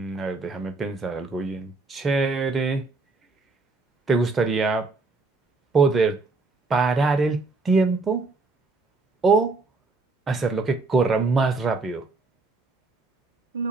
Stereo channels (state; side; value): quieter; left; 3.7 dB